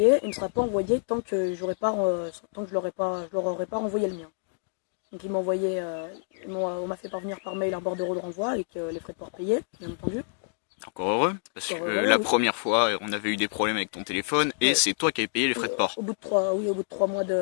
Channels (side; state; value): right; silent; digital silence